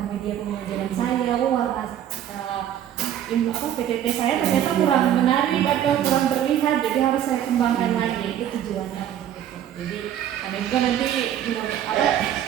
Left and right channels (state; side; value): quieter; left; 10.7 dB